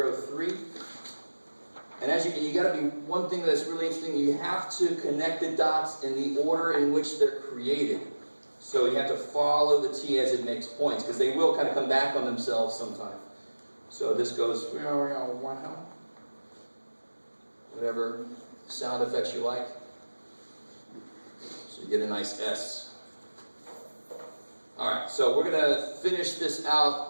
3. And as you got to be, one thing that's really interesting, you have to connect the dots in the order in which they're created. So you have to follow the t as it makes points, because they will kind of come back on themselves sometime. So this goes, whatever sound effects you like. So you get a nice S. Alright, so we're going to finish this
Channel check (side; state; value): both; inverted; correlation -1.00